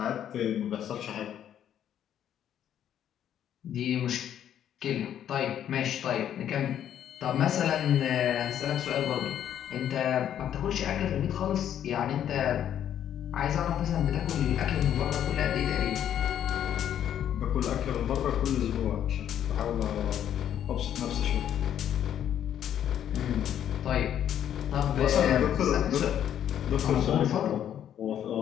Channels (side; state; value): right; quieter; 10.1 dB